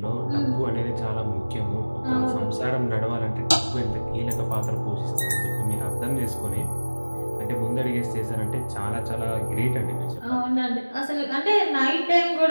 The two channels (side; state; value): both; inverted; correlation -1.00